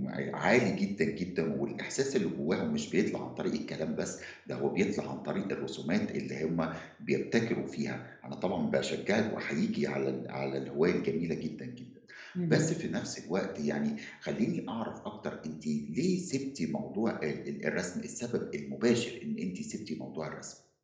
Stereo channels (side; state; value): both; identical; correlation 1.00